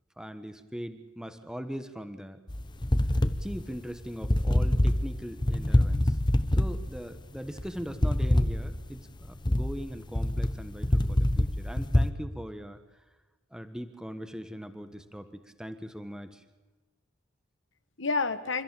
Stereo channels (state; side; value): normal; both; correlation 0.92